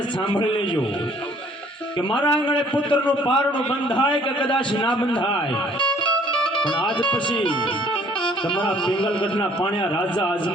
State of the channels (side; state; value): both; normal; correlation 0.58